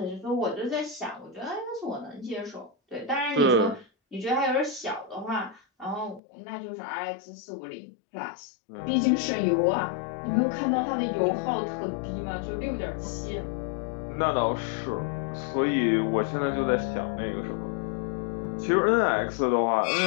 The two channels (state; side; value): drops out; right; at 6.2 s